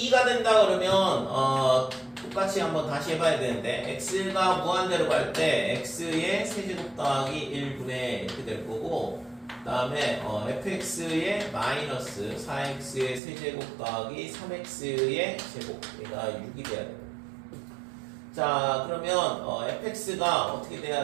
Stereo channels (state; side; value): drops out; left; at 13.2 s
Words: 2가 된다 그러면 똑같이 한번 다시 해봐야 되는데 x가 무한대로 갈 때 x의 세제곱 더하기 1분의 이렇게 될 거고 그 다음에 fx의 마이너스 4x의 세제곱 더하기 3x의 제곱 얘가 6이 돼야 돼요. 자 그러면 fx가 어떻게